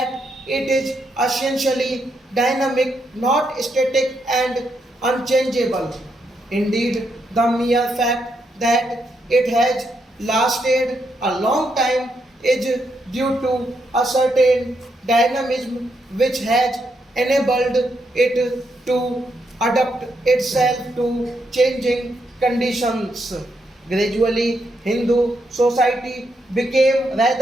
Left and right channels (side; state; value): both; normal; correlation 0.79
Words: it is essentially dynamic, not static and unchangeable. Indeed, the mere fact that it has lasted a long time is due to a certain dynamism which has enabled it to adapt itself to changing conditions. Gradually, Hindu society became